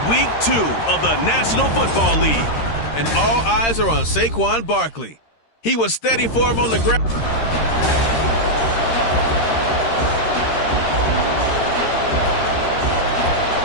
week 2 of the National Football League, and all eyes are on Saquon Barkley. He was steady for him on the ground.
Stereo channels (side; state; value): right; late; 13 ms